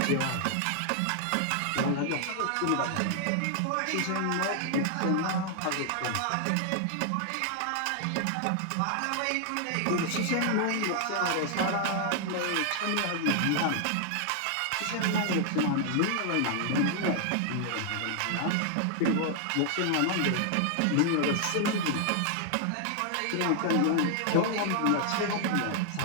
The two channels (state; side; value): different; both; correlation 0.00